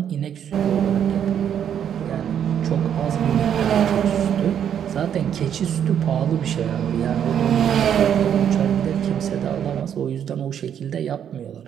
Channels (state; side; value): quieter; left; 9.0 dB